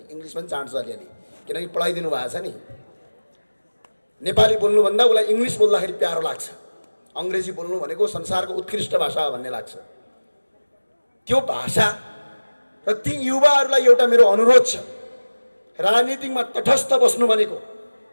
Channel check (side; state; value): both; inverted; correlation -1.00